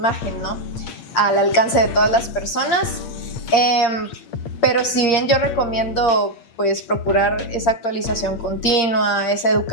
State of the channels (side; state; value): right; late; 8.6 ms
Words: ¿no? Al alcance de todas las personas. Pero si bien yo recomiendo pues procurar esa actualización continua, esa